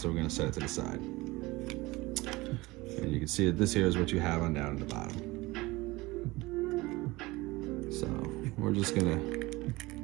we're going to set it to the side. And you can see that this here is what you have on down at the bottom. So we're just gonna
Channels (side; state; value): left; quieter; 21.2 dB